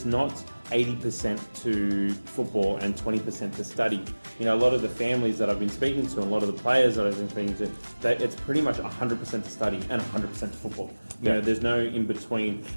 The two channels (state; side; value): inverted; both; correlation -1.00